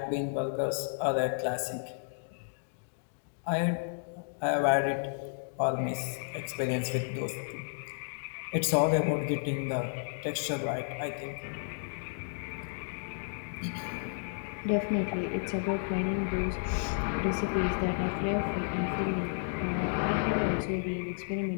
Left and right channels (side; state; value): right; silent; digital silence